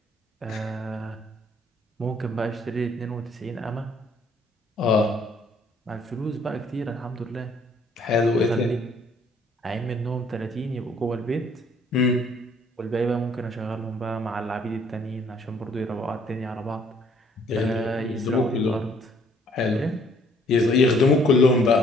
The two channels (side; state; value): both; normal; correlation 0.62